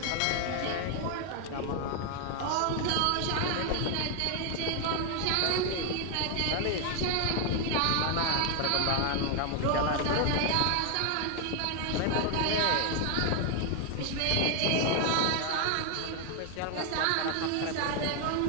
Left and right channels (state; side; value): different; both; correlation 0.00